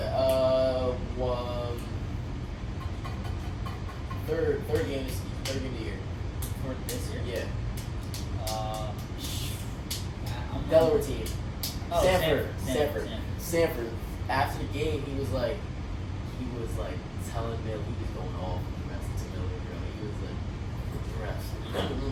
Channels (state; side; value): identical; both; correlation 1.00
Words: Third game of the year. For this year? Yeah. Delaware team. Oh, Sanford. After the game, he was like telling Bill he was going off on the rest of Miller, bro. He was like,